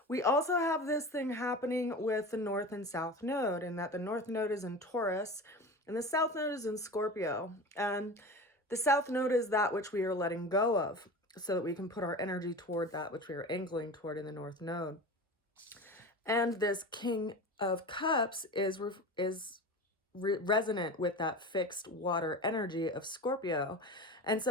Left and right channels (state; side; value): normal; both; correlation 0.31